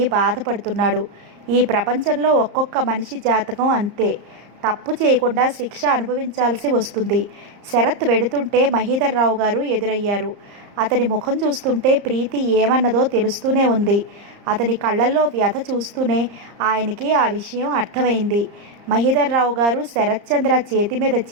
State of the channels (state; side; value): late; left; 34 ms